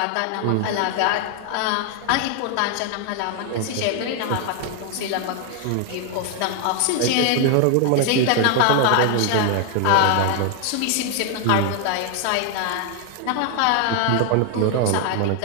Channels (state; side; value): different; both; correlation 0.00